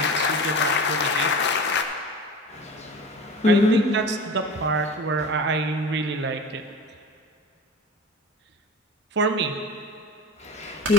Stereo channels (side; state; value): both; normal; correlation 0.33